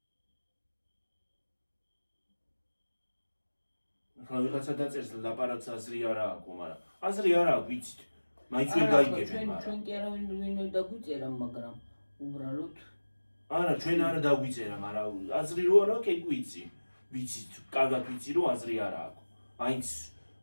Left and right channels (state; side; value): inverted; both; correlation -1.00